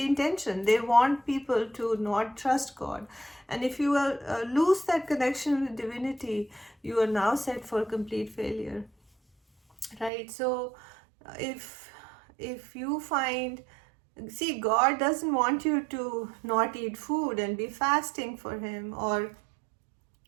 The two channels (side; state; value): left; drops out; at 10.1 s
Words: intention. They want people to not trust God, and if you lose that connection with divinity, you are now set for complete failure, right? So if you find, see, God doesn't want you to not eat food and be fasting for him, or